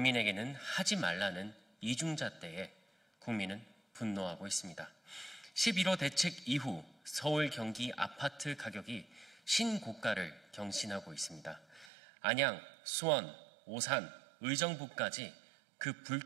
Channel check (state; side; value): drops out; left; at 11.9 s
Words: 하지 말라는 이중잣대에 국민은 분노하고 있습니다. 11호 대책 이후 서울, 경기 아파트 가격이 신고가를 경신하고 있습니다. 안양, 수원, 오산, 의정부까지 그